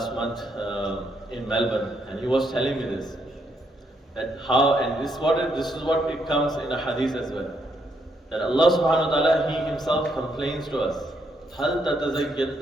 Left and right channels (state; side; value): normal; both; correlation 0.75